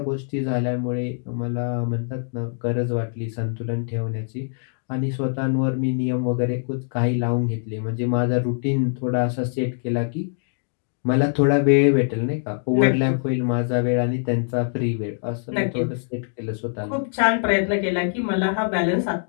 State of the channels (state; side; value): silent; right; digital silence